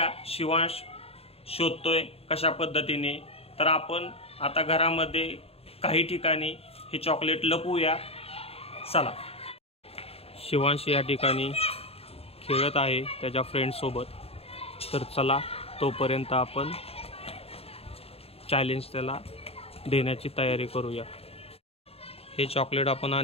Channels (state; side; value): late; right; 0.29 ms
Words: शिवांश शोधतोय कशा पद्धतीने. तर आपण आता घरामध्ये काही ठिकाणी हे चॉकलेट लपवूया. चला. शिवांश या ठिकाणी खेळत आहे त्याच्या फ्रेंडसोबत. तर चला, तोपर्यंत आपण चॅलेंज त्याला देण्याची तयारी करूया. हे चॉकलेट आपण